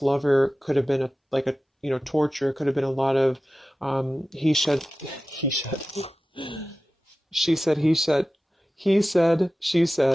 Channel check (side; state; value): both; normal; correlation 0.95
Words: could have been torture. It could have been a lot of, she said, he said, she